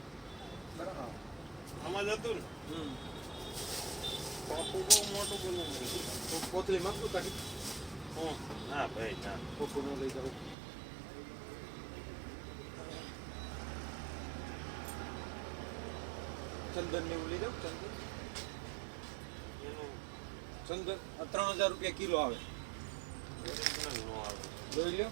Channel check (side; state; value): left; drops out; at 10.6 s